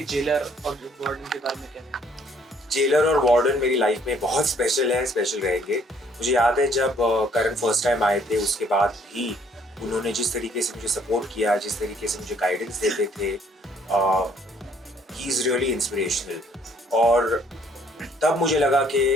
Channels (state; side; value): normal; both; correlation 0.63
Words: जेलर और वार्डन के बारे में क्या है? जेलर और वार्डन मेरी लाइफ में बहुत स्पेशल है, स्पेशल रहेंगे। मुझे याद है जब करण फर्स्ट टाइम आए थे, उसके बाद भी उन्होंने जिस तरीके से मुझे सपोर्ट किया, जिस तरीके से मुझे गाइडेंस देते थे, ही इज़ रियली इंस्पिरेशनल। और तब मुझे लगा कि